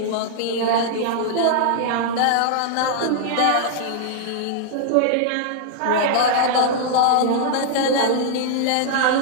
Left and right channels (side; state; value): both; different; correlation -0.01